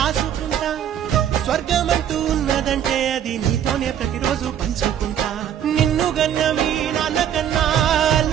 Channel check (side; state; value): left; quieter; 9.8 dB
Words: స్వర్గమంటూ ఉన్నదంటే అది నీతోనే ప్రతిరోజు పంచుకుంటా నిన్ను గన్న మీ నాన్న కన్నా